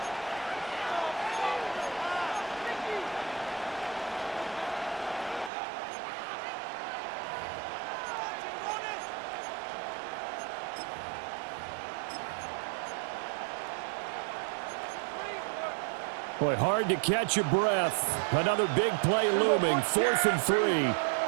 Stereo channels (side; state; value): left; drops out; at 5.5 s